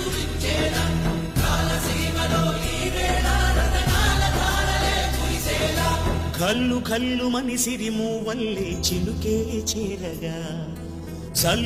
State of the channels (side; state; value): both; identical; correlation 1.00